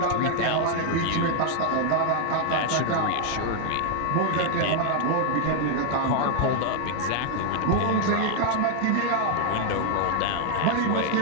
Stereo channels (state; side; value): different; both; correlation 0.00